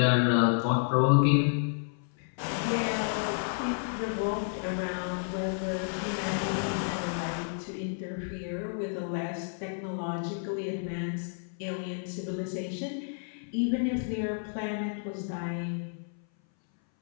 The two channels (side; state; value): right; silent; 57 dB below the other